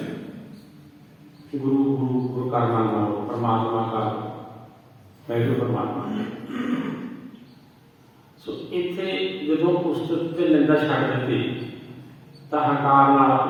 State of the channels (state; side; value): identical; both; correlation 1.00